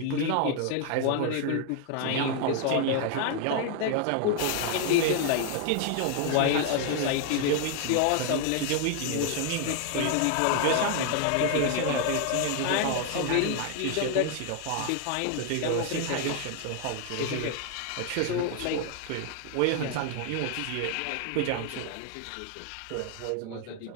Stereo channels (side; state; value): both; different; correlation 0.00